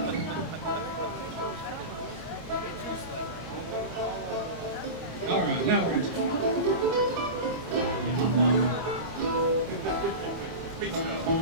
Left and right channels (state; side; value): late; left; 25 ms